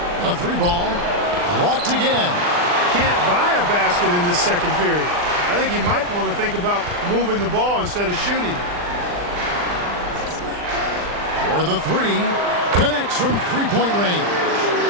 A 3-ball, blocked again. Can't buy a basket in this second period. I think he might want to think about moving the ball instead of shooting it. For the 3, connects from 3-point range.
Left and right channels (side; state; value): left; late; 39 ms